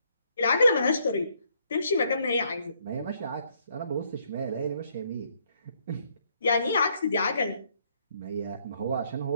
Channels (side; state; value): both; inverted; correlation -0.70